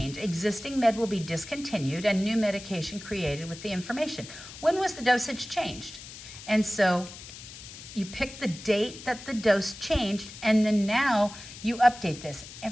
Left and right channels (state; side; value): noise; left; hiss, 14 dB below the sound